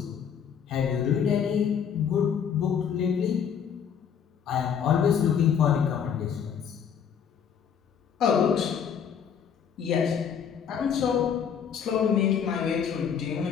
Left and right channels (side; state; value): right; quieter; 7.6 dB